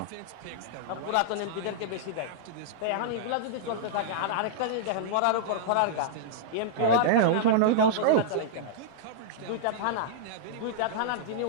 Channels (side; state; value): both; different; correlation -0.02